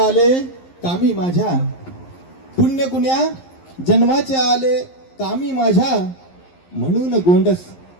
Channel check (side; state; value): right; late; 11 ms